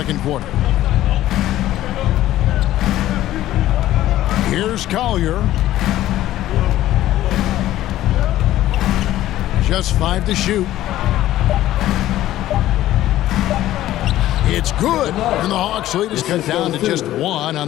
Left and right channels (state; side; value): quieter; right; 14.1 dB